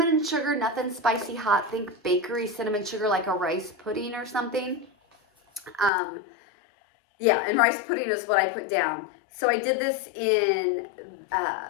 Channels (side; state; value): right; drops out; at 5.9 s